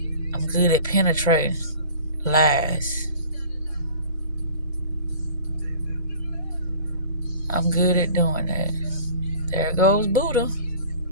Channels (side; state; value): both; inverted; correlation -0.44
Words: I'm good at penetrating lies. I'm good at doing that. There goes Buddha.